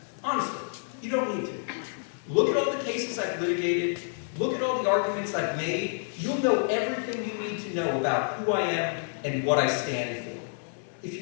Honestly, you don't need to. Look at all the cases I've litigated. Look at all the arguments I've made. You'll know everything you need to know about who I am and what I stand for. If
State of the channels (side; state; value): right; silent; digital silence